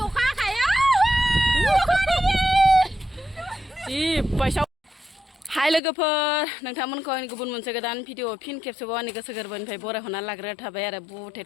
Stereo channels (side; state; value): right; drops out; at 5.8 s